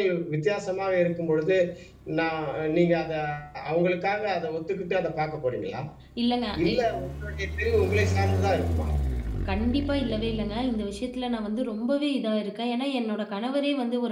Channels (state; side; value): identical; both; correlation 1.00